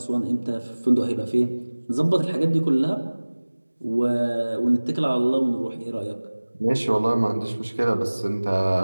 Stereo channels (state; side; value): inverted; both; correlation -1.00